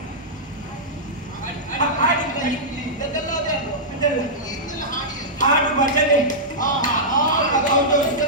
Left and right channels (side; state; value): both; normal; correlation -0.11